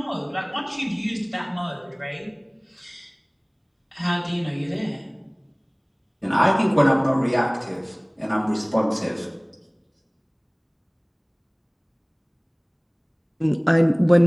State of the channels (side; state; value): both; identical; correlation 1.00